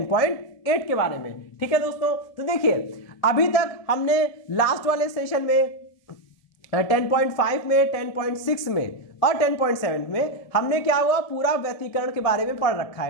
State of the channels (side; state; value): right; late; 1.7 ms